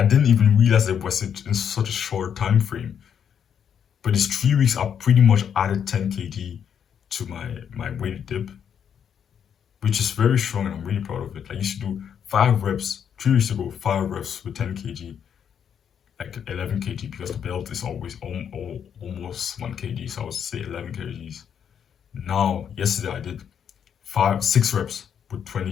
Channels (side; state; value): right; quieter; 8.2 dB